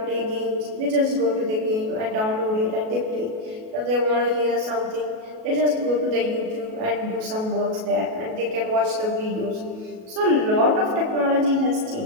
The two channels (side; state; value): left; late; 37 ms